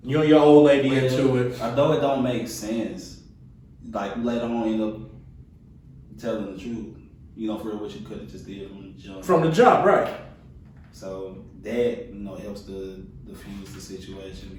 You and your old lady into it. Although it don't make sense, like later on end up telling the truth. For what you could have just did from the jump. From the jump, right. So that, helps to diffuse the situation,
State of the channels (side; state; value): both; identical; correlation 1.00